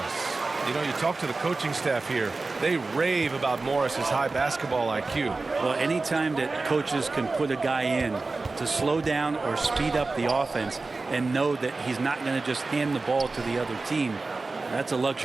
You know, you talk to the coaching staff here. They rave about Morris's high basketball IQ. Well, anytime that coaches can put a guy in to slow down or speed up the offense and know that he's not going to just hand the ball to the other team, that's a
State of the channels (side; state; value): left; quieter; 3.6 dB